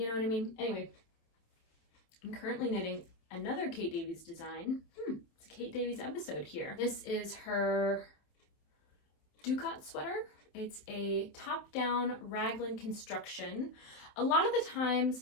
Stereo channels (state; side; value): late; right; 27 ms